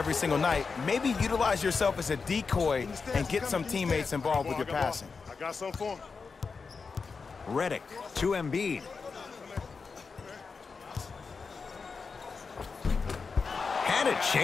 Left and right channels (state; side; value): quieter; right; 4.9 dB